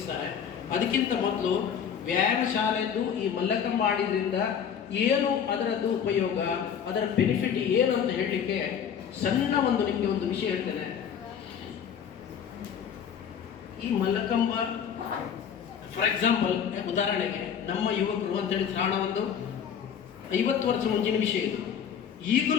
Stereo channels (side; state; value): right; quieter; 8.0 dB